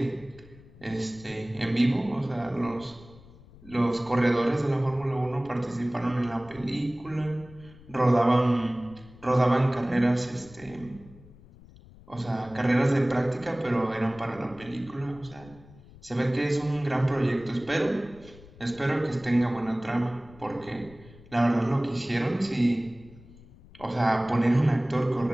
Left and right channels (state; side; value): noise; left; rumble, 22 dB below the sound